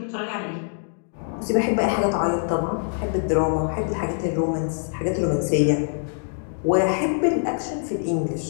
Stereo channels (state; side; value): silent; right; digital silence